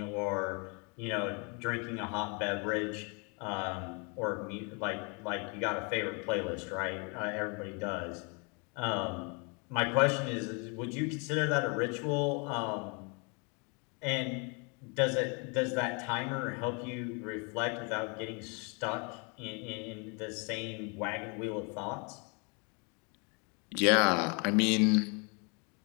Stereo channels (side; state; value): right; quieter; 33.6 dB